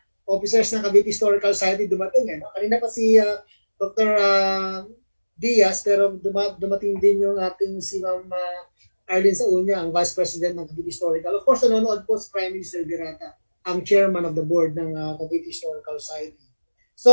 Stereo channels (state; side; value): inverted; both; correlation -1.00